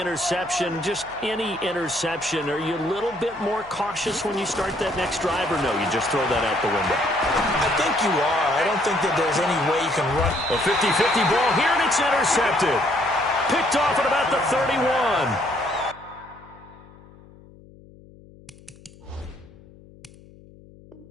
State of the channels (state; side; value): noise; left; hum, 23 dB below the sound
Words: just any interception, are you a little bit more cautious when you start that next drive, or no, you just throw that out the window? I think you are. I don't think that there's any way you can run. A 50-50 ball here, and it's intercepted. Picked off at about the 31.